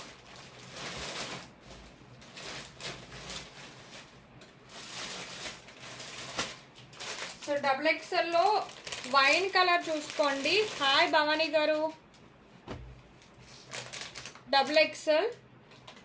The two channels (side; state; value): both; identical; correlation 1.00